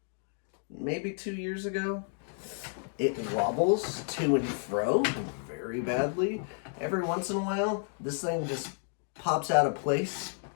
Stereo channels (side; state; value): right; silent; 57 dB below the other